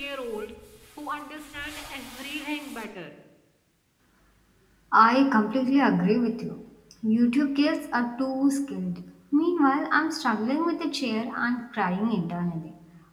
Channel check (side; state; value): both; identical; correlation 1.00